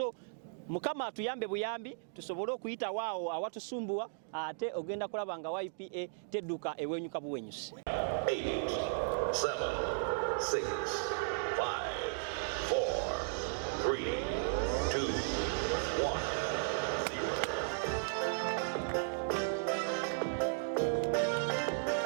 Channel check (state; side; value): silent; left; digital silence